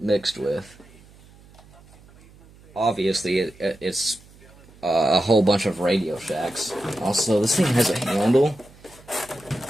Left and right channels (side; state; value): right; noise; hum, 25 dB below the sound